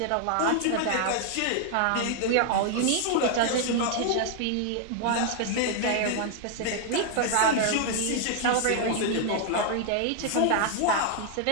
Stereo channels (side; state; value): both; different; correlation 0.00